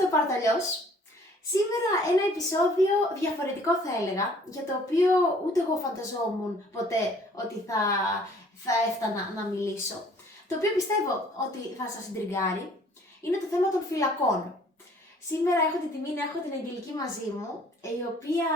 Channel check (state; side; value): normal; both; correlation 0.56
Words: Παρταλιός. Σήμερα ένα επεισόδιο διαφορετικό θα έλεγα, για το οποίο ούτε εγώ φανταζόμουν ποτέ ότι θα έφτανα να μιλήσω. Το οποίο πιστεύω ότι θα σας συντριγκάρει, είναι το θέμα των φυλακών. Σήμερα έχω την τιμή να έχω την Αγγελική μαζί μου, η οποία